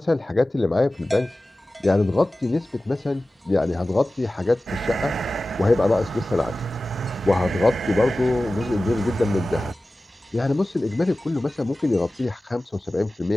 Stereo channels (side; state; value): both; normal; correlation 0.96